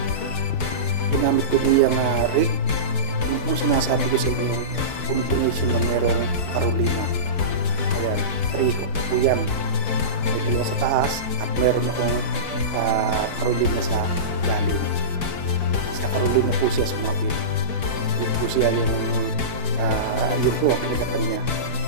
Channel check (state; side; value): late; right; 4.6 ms